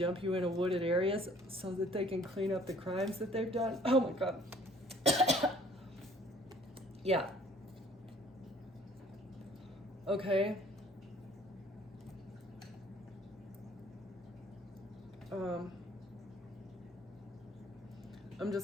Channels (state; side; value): normal; both; correlation 0.56